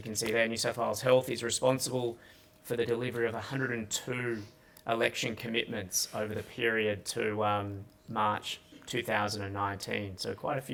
can see there, New South Wales Health is responsible for the delivery of 102 election commitments over the period to March 2019. So quite a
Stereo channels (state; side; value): identical; both; correlation 1.00